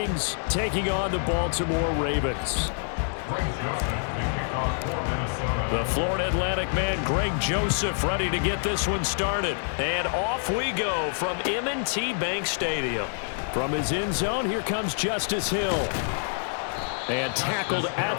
taking on the Baltimore Ravens. The Florida Atlantic man, Greg Joseph, ready to get this one started. And off we go from M&T Bank Stadium. From his end zone, here comes Justice Hill. And tackled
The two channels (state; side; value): silent; right; 60 dB below the other